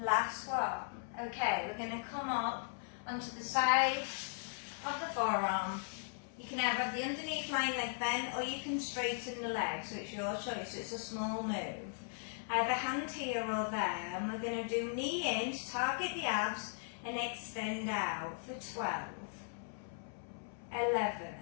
one. Okay, we're going to come up onto the side of the forearm. You can either have the underneath lying leg bent or you can straighten the leg, so it's your choice. It's a small move. I have a hand here or there, and we're going to do knee in to target the abs and extend out for 12,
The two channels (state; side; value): silent; right; 52 dB below the other